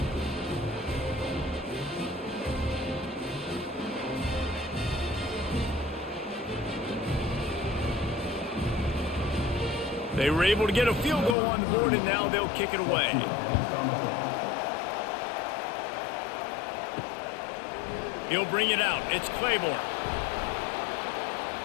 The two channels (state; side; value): drops out; right; at 11.4 s